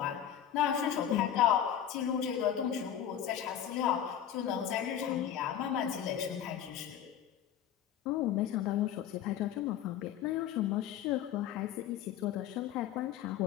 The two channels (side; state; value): right; quieter; 10.1 dB